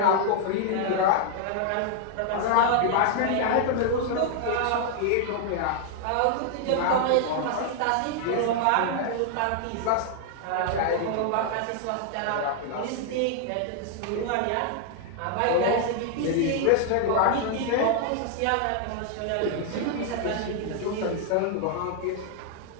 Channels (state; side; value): different; both; correlation 0.00